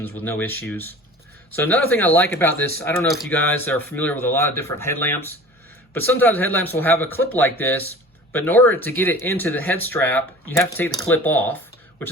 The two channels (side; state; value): both; normal; correlation 0.42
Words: with no issues. So another thing I like about this, I don't know if you guys are familiar with a lot of different headlamps, but sometimes headlamps will have a clip like this, but in order to get it into the head strap, you have to take the clip off, which